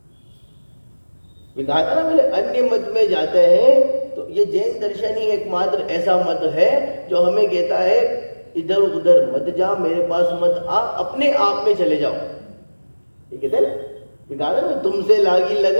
कहा था ना मैंने, अन्य मत में जाते हैं तो ये जैन दर्शन ही एकमात्र ऐसा मत है जो हमें कहता है इधर उधर मत जा, मेरे पास मत आ, अपने आप में चले जाओ। ये कहते हैं ना, कहा ना तुमसे लागी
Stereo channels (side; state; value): both; inverted; correlation -1.00